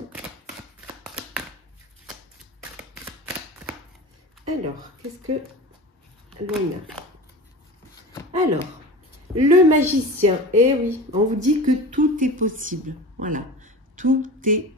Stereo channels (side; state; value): both; normal; correlation 0.32